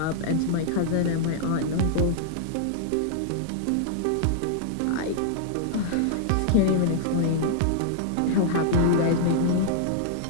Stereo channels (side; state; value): both; different; correlation -0.01